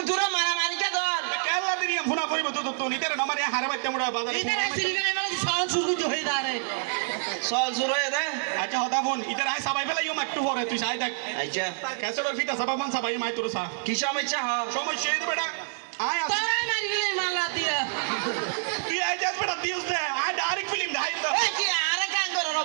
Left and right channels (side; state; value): left; silent; digital silence